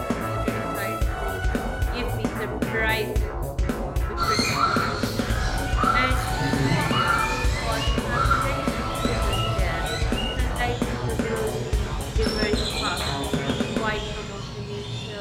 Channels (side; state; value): both; identical; correlation 1.00